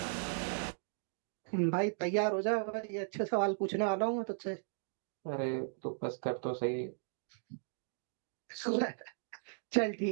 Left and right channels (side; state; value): left; silent; digital silence